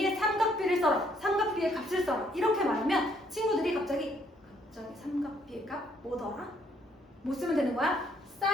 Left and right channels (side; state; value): both; normal; correlation 0.68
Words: 삼각비를 써라, 삼각비의 값을 써라 이렇게 말하면 친구들이 갑자기 삼각비의 값 뭐더라? 뭐 쓰면 되는 거야?